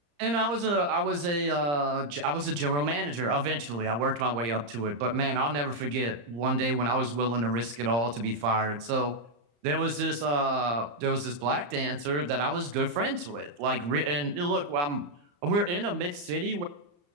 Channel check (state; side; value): late; left; 34 ms